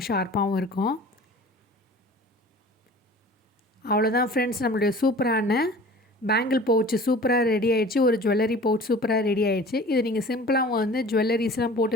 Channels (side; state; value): both; normal; correlation 0.44